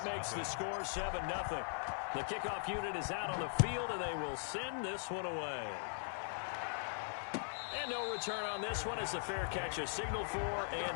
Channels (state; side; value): silent; right; 51 dB below the other